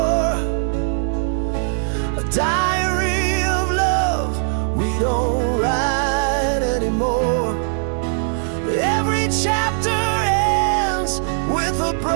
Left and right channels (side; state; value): left; silent; 66 dB below the other